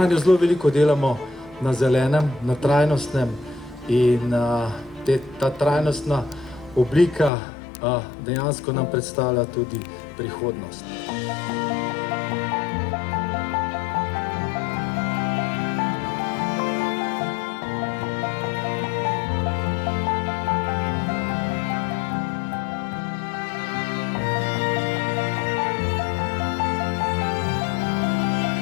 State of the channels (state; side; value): drops out; right; at 7.3 s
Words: zelo veliko delamo na zelenem, na trajnostnem in ta trajnostna oblika dejansko nam predstavlja tudi prihodnost.